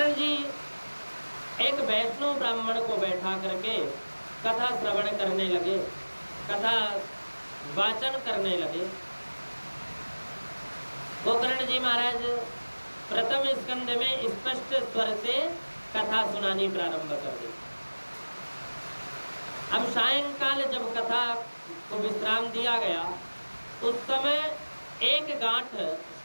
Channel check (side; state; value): both; inverted; correlation -1.00